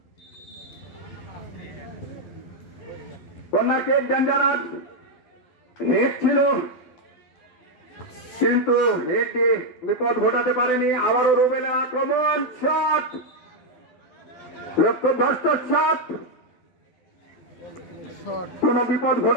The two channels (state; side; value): late; right; 12 ms